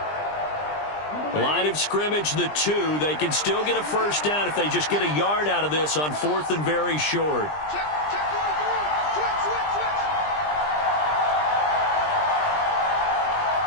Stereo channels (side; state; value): right; late; 20 ms